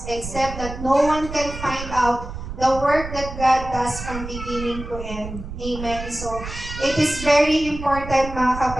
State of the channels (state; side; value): noise; right; rumble, 9 dB below the sound